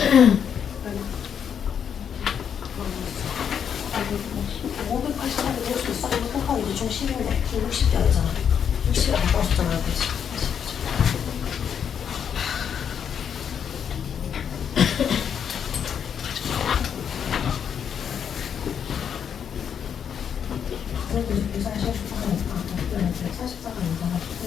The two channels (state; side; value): quieter; right; 7.9 dB